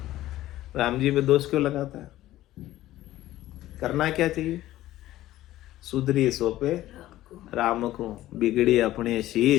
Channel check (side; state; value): right; quieter; 14.9 dB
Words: राम जी पे दोष क्यों लगाता है? करना क्या चाहिए? सुधरी सोपे राम को, बिगड़ी अपने